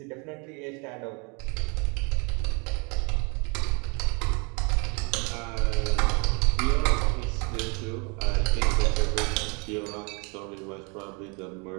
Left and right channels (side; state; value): left; quieter; 32.5 dB